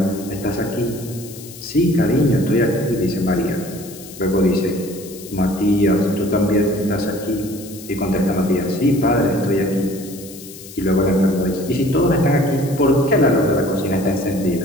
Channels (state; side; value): noise; left; hiss, 16 dB below the sound